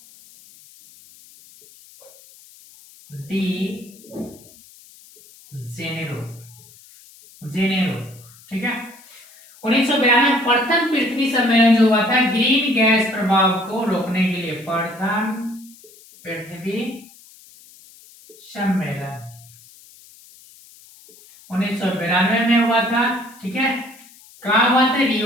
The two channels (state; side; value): noise; left; hiss, 24 dB below the sound